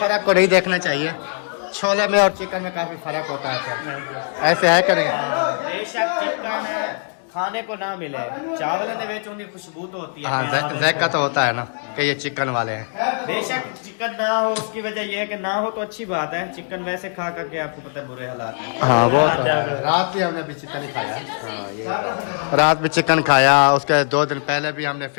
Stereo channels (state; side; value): silent; right; digital silence